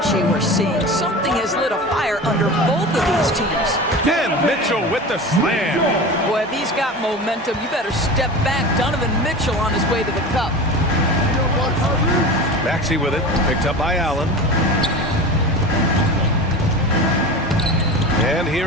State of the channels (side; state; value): both; normal; correlation 0.31